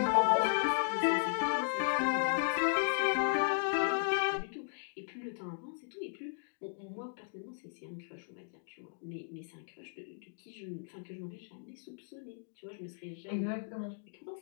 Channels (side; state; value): right; silent; digital silence